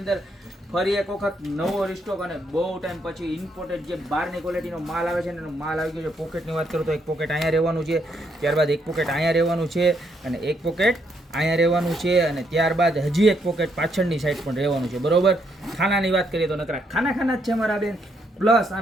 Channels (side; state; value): both; normal; correlation 0.75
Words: ફરી એક વખત નવો રિસ્ટોક અને બહુ ટાઈમ પછી ઇમ્પોર્ટેડ જે બહારની ક્વોલિટીનો માલ આવે છે ને એનો માલ આવી ગયો છે. પોકેટની વાત કરું તો એક પોકેટ અહીંયા રહેવાનું છે, ત્યારબાદ એક પોકેટ અહીંયા રહેવાનું છે અને એક પોકેટ અહીંયા રહેવાનું છે અને ત્યારબાદ હજી એક પોકેટ પાછળની સાઈડ પણ રહેવાનું છે. બરોબર. ખાનાની વાત કરીએ તો નકરા ખાના જ છે મારા બેન. પ્લસ